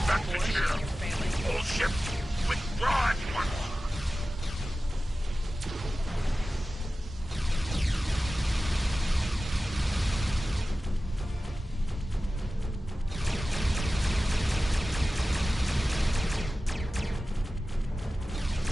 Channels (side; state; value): both; normal; correlation 0.95